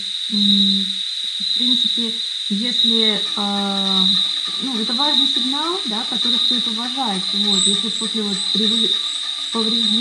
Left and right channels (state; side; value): identical; both; correlation 1.00